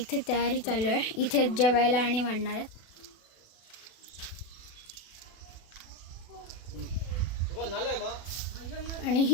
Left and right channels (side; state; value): right; late; 36 ms